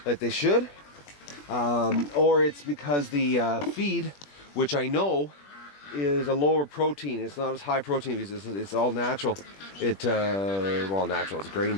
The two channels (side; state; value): right; late; 21 ms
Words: like they should, or it's because the feed, which I know is a lower protein. It's not as high protein because it's all natural. Well, natural. It's grain,